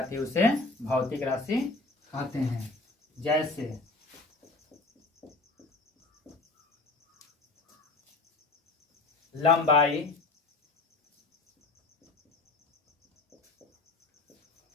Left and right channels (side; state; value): right; quieter; 3.3 dB